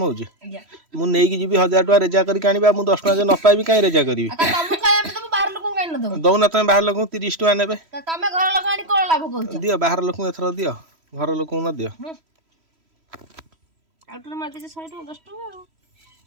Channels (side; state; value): left; late; 3.1 ms